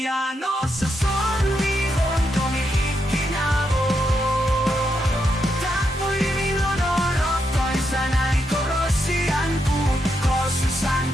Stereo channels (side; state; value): both; normal; correlation 0.82